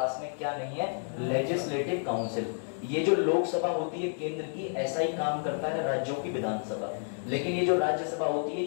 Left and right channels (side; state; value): right; silent; digital silence